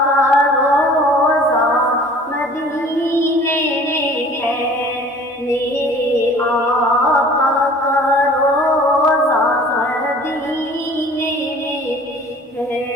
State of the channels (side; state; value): both; normal; correlation 0.48